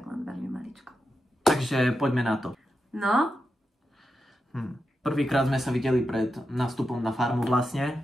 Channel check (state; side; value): normal; both; correlation 0.88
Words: len veľmi maličko. Takže poďme na to. No? Prvýkrát sme sa videli pred nástupom na farmu